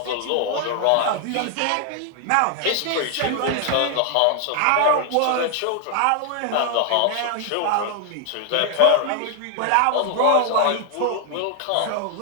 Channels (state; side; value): different; both; correlation 0.00